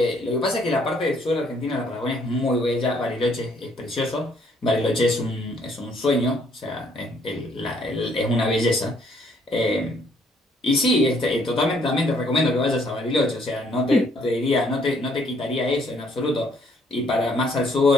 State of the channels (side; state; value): both; normal; correlation 0.66